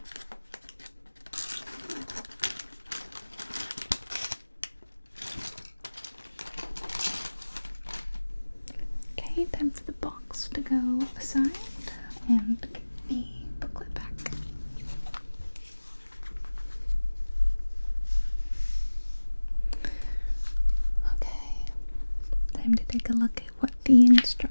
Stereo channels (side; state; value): both; inverted; correlation -1.00